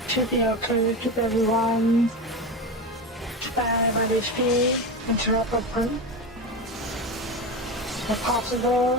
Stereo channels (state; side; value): normal; both; correlation 0.21